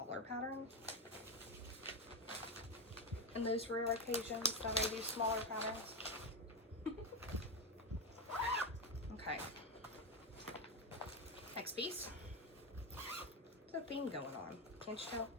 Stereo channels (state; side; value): normal; both; correlation 0.11